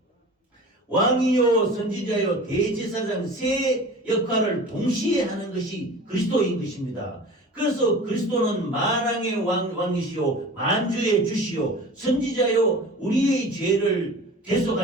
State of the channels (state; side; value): normal; both; correlation 0.39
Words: 왕이요 선지자요 대제사장 세 역할을 동시에 하는 것이 그리스도인 것입니다. 그래서 그리스도는 만왕의 왕이시요 만주의 주시요 선지자요 우리의 죄를